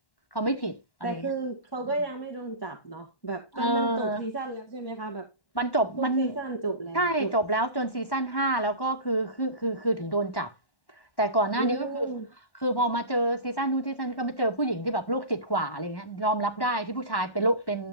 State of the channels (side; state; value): right; late; 1.1 ms